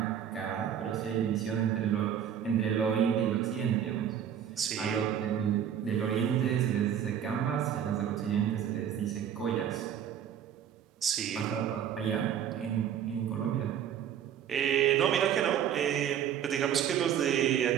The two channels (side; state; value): left; quieter; 9.3 dB